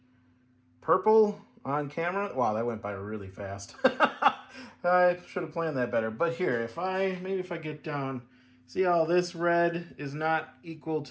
purple on camera? Wow, that went by really fast. I should have planned that better. But here, if I get down, see how this red is not equal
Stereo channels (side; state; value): both; identical; correlation 1.00